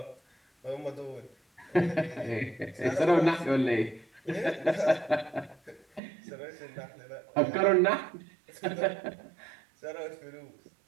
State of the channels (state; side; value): drops out; left; at 6.0 s